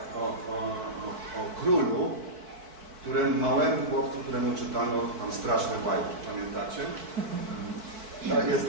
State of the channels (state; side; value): late; left; 4.6 ms